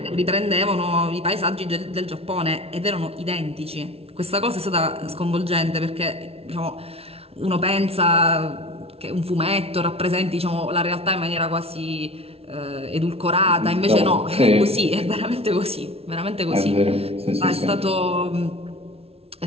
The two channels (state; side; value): late; left; 0.29 ms